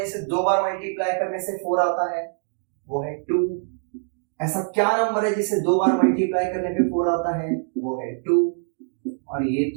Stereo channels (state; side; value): silent; left; digital silence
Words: जिसे 2 बार मल्टीप्लाई करने से 4 आता है, वो है 2। ऐसा क्या नंबर है जिसे 2 बार मल्टीप्लाई करने पे 4 आता है, वो है 2। और ये